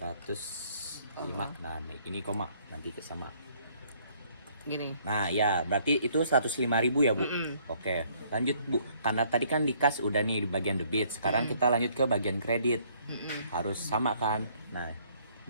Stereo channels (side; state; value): both; inverted; correlation -0.64